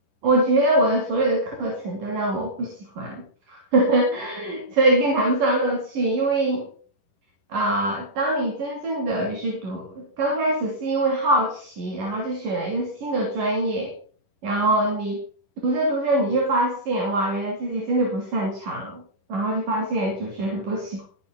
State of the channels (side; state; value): left; late; 10 ms